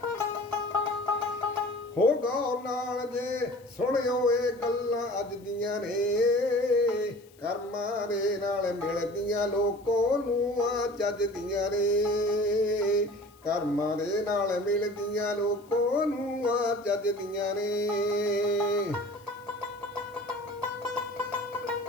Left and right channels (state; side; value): noise; left; hiss, 29 dB below the sound